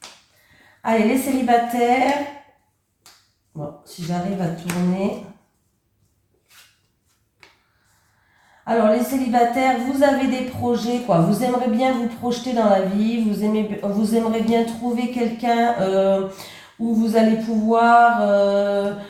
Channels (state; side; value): identical; both; correlation 1.00